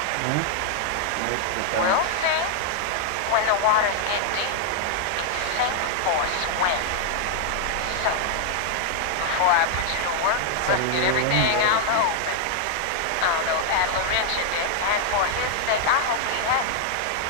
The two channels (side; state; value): both; different; correlation 0.00